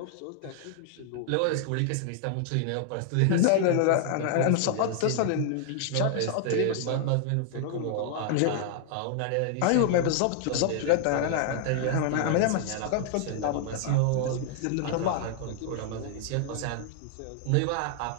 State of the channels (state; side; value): different; both; correlation -0.01